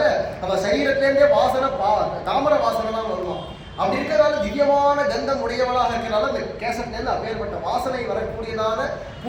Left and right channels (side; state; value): both; identical; correlation 1.00